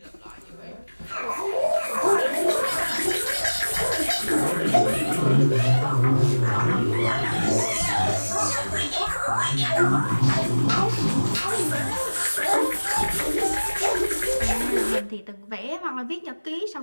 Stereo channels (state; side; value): inverted; both; correlation -1.00